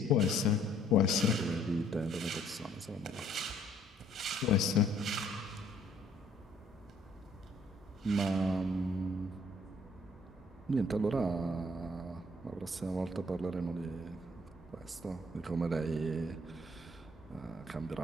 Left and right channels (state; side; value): normal; both; correlation 0.62